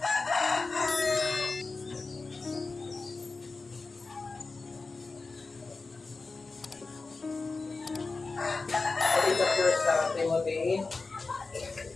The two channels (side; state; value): right; quieter; 3.9 dB